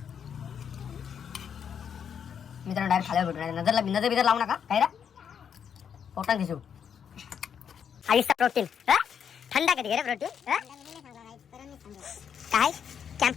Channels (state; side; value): quieter; right; 7.8 dB